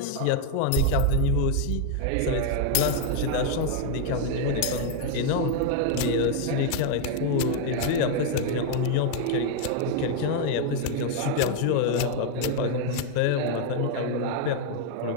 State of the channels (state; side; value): different; both; correlation 0.01